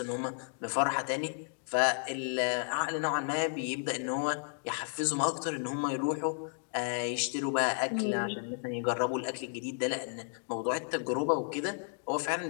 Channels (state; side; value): silent; right; 56 dB below the other